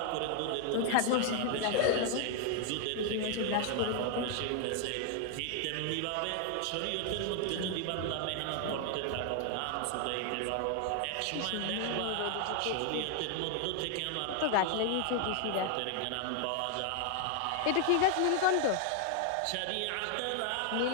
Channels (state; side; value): different; both; correlation 0.00